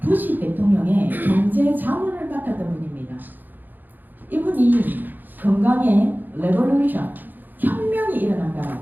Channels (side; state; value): left; late; 0.087 ms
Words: 부시 대통령의 경제 자문을 맡았던 분입니다. 이분이 건강의 레볼루션 혁명이